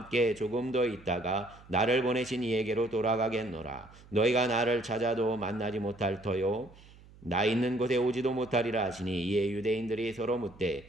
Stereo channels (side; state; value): right; noise; hum, 23 dB below the sound